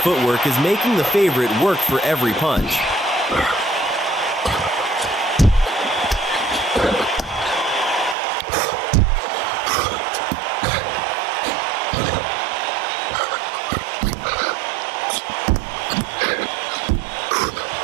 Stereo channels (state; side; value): drops out; left; at 8.2 s